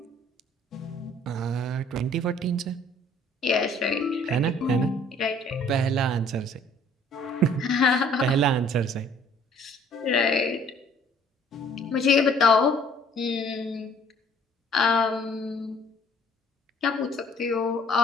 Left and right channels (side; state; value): both; normal; correlation 0.57